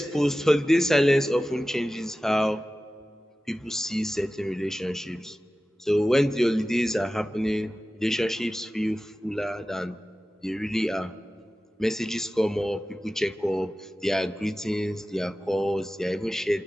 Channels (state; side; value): normal; both; correlation 0.95